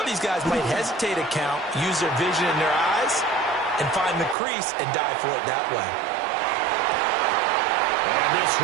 these guys might hesitate to count, use their vision in their eyes, and find the crease and dive for it that way. And this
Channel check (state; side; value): drops out; left; at 4.4 s